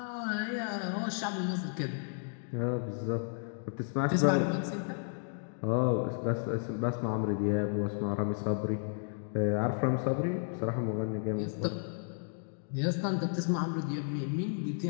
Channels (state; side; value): silent; right; digital silence